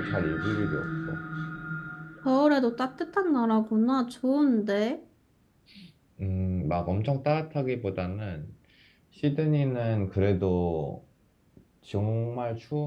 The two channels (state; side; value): identical; both; correlation 1.00